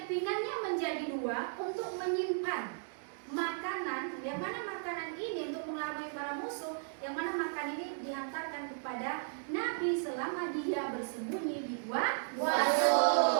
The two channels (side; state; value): left; silent; digital silence